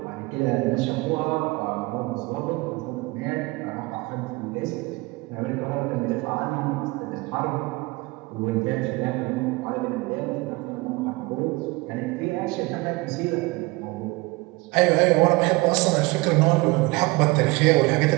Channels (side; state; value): left; quieter; 23.3 dB